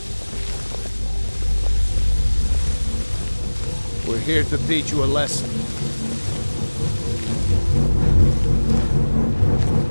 We're here to teach you a lesson.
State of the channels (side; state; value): both; inverted; correlation -1.00